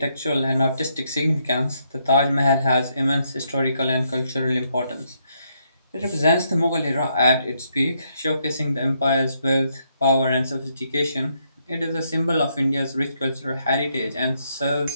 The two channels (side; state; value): both; inverted; correlation -0.75